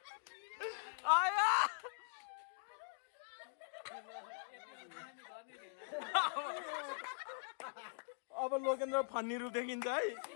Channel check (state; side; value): silent; right; digital silence